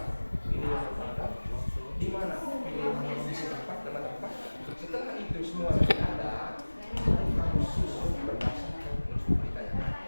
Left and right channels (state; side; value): inverted; both; correlation -1.00